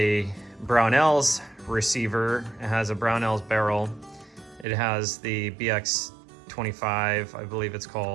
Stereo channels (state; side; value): drops out; left; at 4.7 s